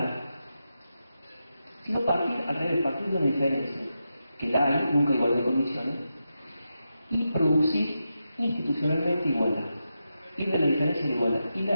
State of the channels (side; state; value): both; inverted; correlation -0.88